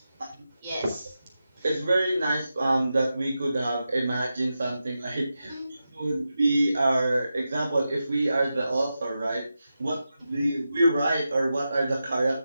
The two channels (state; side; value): inverted; both; correlation -0.90